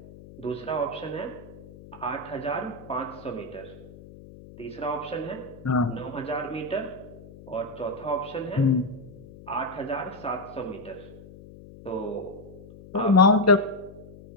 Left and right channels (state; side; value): noise; left; hum, 18 dB below the sound